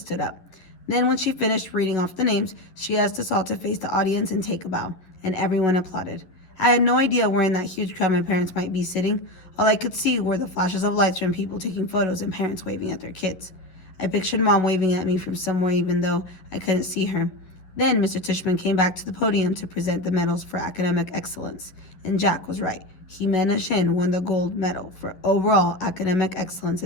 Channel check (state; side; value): late; right; 11 ms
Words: up. Then when she finished reading off the names, she asked us all to face the audience and take a bow, and everyone applauded. I had no idea where in that huge crowd my parents might be sitting. All I could see were the flashes of lights from people taking photos and parents waving at their kids. I pictured Mom waving at me from somewhere even though I couldn't see her. Then Mr. Tishman came back to the podium to present the medals for academic excellence, and Jack was right. Jimena Shin won the gold medal for overall academic excellence